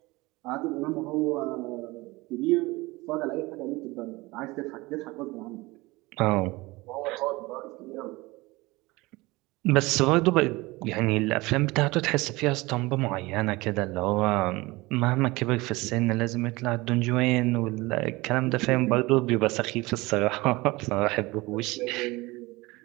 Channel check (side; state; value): left; quieter; 21.9 dB